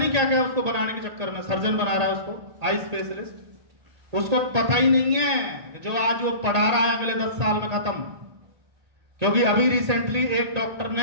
क्या क्या उसको बनाने के चक्कर में सर्जन बना रहा है उसको, आई स्पेशलिस्ट। उसको पता ही नहीं है जो आज वो पढ़ा रहा है अगले 10 साल में खत्म। क्योंकि अभी रिसेंटली एक डॉक्टर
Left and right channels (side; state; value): left; late; 1.8 ms